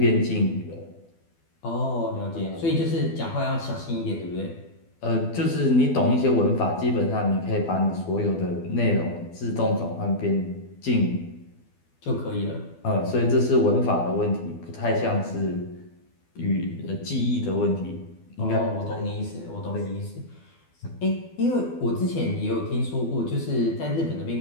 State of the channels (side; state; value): right; late; 12 ms